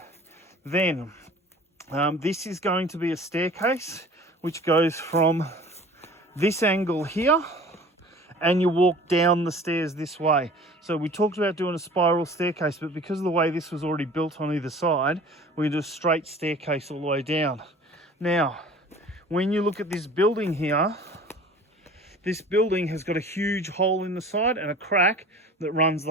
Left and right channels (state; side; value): normal; both; correlation 0.45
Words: Then this is going to be a staircase which goes from this angle here, and you walk down the stairs this way. So we talked about doing a spiral staircase, but because of the way this was already built on either side, we do a straight staircase all the way down. Now, when you look at this building here, this building has got a huge hole in the side and a crack that runs